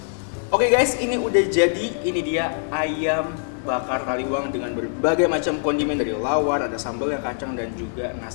Oke guys, ini udah jadi. Ini dia ayam bakar Taliwang dengan berbagai macam kondimen dari lawar, ada sambalnya, kacang, dan juga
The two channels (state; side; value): silent; right; 61 dB below the other